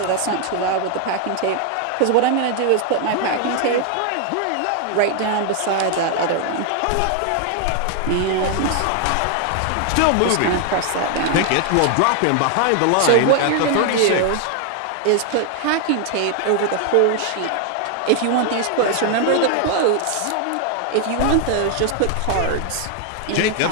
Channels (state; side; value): different; both; correlation 0.00